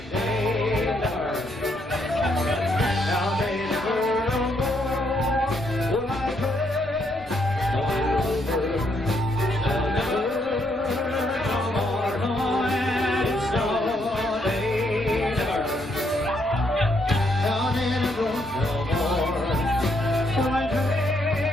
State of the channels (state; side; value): normal; both; correlation 0.75